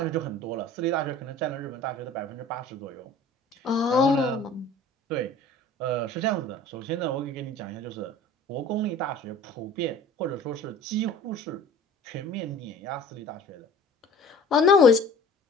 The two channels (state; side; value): normal; both; correlation 0.44